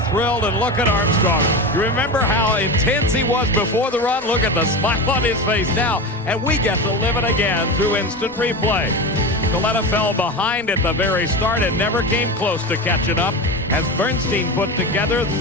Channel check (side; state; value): both; normal; correlation 0.24